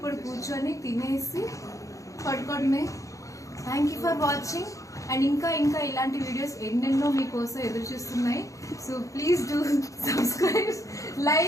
కూర్చొని తినేసి పడుకోవడమే. Thank you for watching. And ఇంకా ఇలాంటి వీడియోస్ ఎన్నెన్నో మీకోసం ఎదురు చూస్తున్నాయి. So please do subscribe,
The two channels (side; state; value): right; late; 0.16 ms